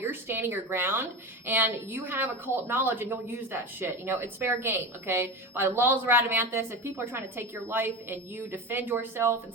You're standing your ground, and you have occult knowledge, and you'll use that shit. You know, it's fair game, okay? By the laws of Radamanthus, if people are trying to take your life and you defend yourself and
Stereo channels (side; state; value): both; normal; correlation 0.25